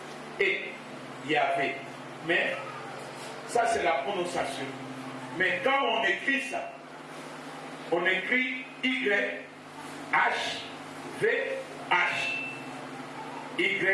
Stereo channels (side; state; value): both; identical; correlation 1.00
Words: et Yahvé. Mais ça c'est la prononciation. Mais quand on écrit ça, on écrit Y-H-V-H.